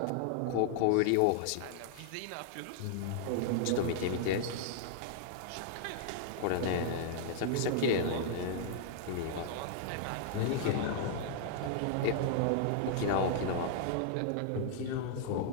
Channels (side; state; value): both; different; correlation -0.01